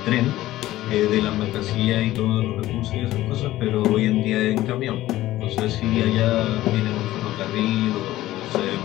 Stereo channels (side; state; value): right; quieter; 15.6 dB